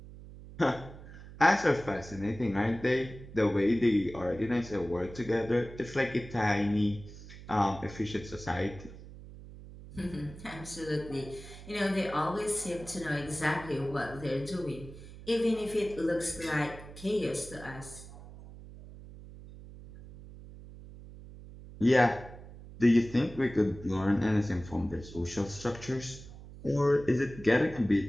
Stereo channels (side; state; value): right; noise; hum, 16 dB below the sound